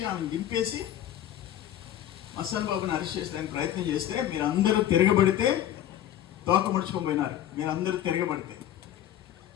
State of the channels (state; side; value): quieter; right; 11.7 dB